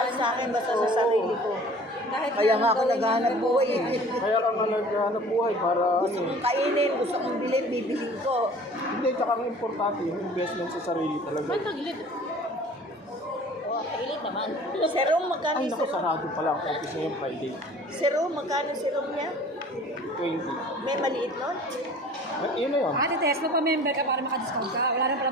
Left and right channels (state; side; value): normal; both; correlation 0.47